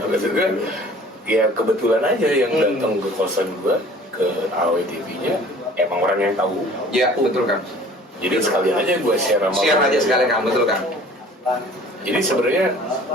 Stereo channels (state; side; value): normal; both; correlation 0.49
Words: ya kebetulan aja yang datang ke kosan gua ke AWTV-nya emang orang yang tahu. Ya, betul kan. Jadi sekalian aja gue share aja sekalian kan, betul kan. Jadi sebenarnya